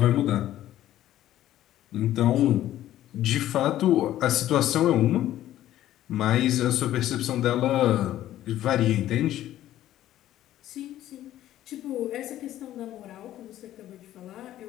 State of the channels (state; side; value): quieter; right; 13.2 dB